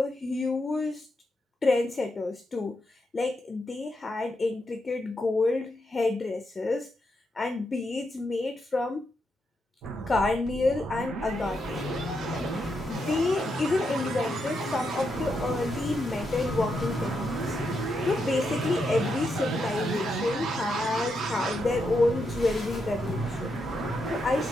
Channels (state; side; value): normal; both; correlation 0.82